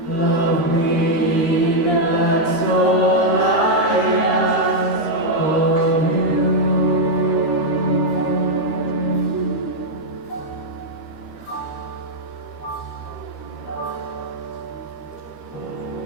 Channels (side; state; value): right; late; 13 ms